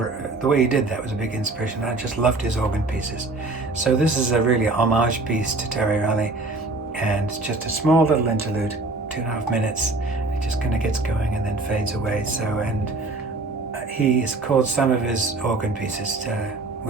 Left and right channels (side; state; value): left; quieter; 3.2 dB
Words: the way he did that was a big inspiration. I just loved his organ pieces. So this is a really homage piece to Terry Riley, and it's just a small little interlude, 2.5 minutes. It just kind of gets going and then fades away. So, and he has called some of his organ pieces